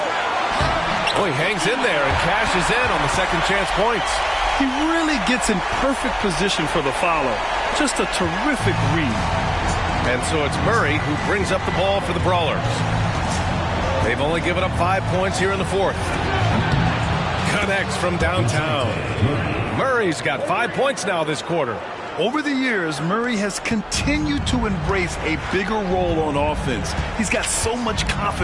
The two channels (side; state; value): both; identical; correlation 1.00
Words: Oh, he hangs in there and cashes in on the second chance points. He really gets in perfect position for the follow. Just a terrific read. And so it's Murray who brings up the ball for the Brawlers. They've only given up 5 points here in the fourth. Connects from downtown. Murray's got 5 points now this quarter. Over the years, Murray has continued to embrace a bigger role on offense. He's got so much